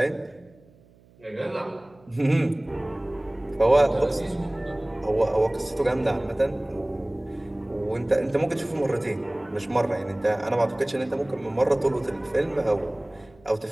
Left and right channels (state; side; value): noise; right; hum, 28 dB below the sound